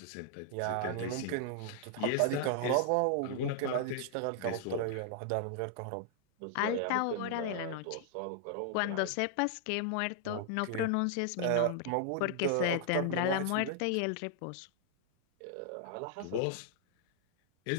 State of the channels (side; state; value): both; different; correlation 0.00